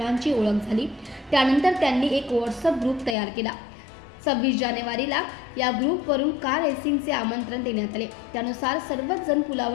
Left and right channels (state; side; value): drops out; right; at 3.2 s